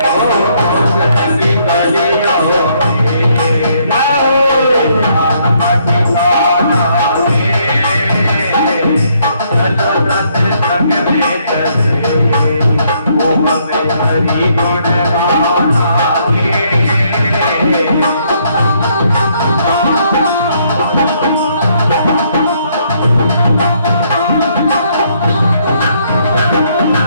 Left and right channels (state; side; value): inverted; both; correlation -0.70